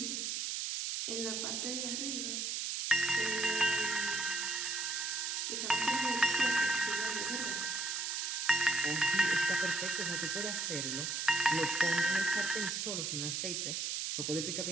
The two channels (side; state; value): right; noise; hiss, 1 dB below the sound